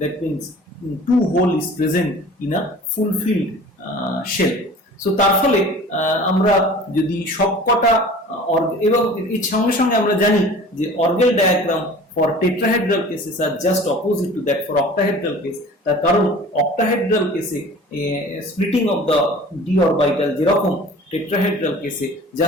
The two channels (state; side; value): normal; both; correlation 0.44